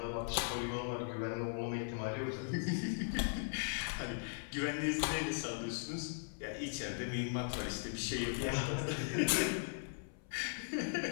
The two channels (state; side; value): silent; right; 52 dB below the other